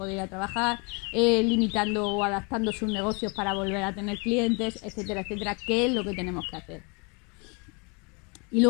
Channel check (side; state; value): right; quieter; 32.4 dB